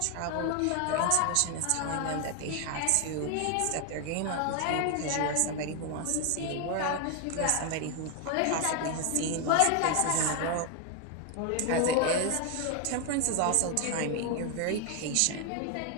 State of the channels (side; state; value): both; different; correlation 0.01